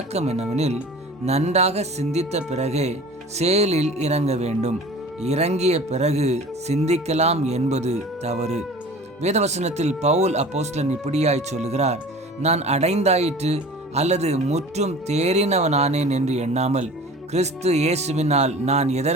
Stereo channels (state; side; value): normal; both; correlation 0.41